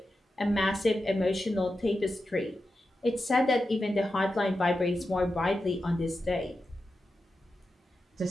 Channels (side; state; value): both; normal; correlation 0.90